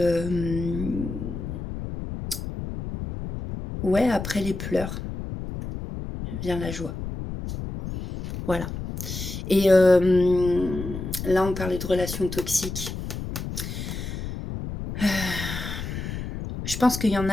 ouais, après les pleurs vient la joie. Voilà. Et là, on parlait de relations toxiques. Je pense qu'il y en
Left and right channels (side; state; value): left; noise; rumble, 7 dB below the sound